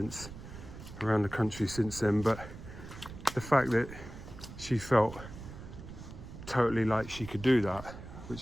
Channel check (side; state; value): right; noise; rumble, 13 dB below the sound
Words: around the country since then, but the fact that she felt totally like she could do that,